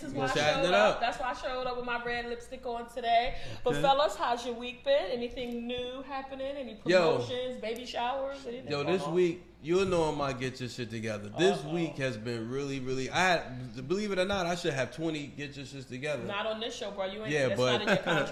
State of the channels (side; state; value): both; identical; correlation 1.00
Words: is why I Chatting showed it up. up. That's why I showed up with my red lipstick on today. But fellas, how's your week been? Anything new happening? Any promotions, baby showers, anything? Yo, this week, you'll know I might get your shit together. This week has been really, really. Believe it or not, I should have 20 get your shit together. Not on this show, bro. You ain't. Yeah, that's but not in your